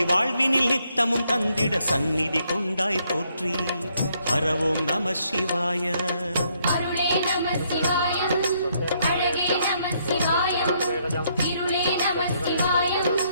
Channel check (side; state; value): both; inverted; correlation -0.72